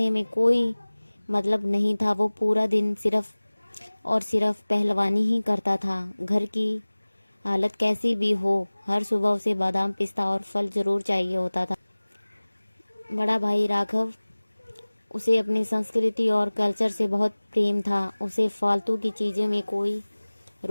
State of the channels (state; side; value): inverted; both; correlation -1.00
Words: में कोई मतलब नहीं था, वो पूरा दिन सिर्फ और सिर्फ पहलवानी ही करता था। घर की हालत कैसी भी हो, हर सुबह उसे बादाम, पिस्ता और फल जरूर चाहिए होता था। बड़ा भाई राघव, उसे अपनी संस्कृति और कल्चर से बहुत प्रेम था। उसे फालतू की चीज़ें में कोई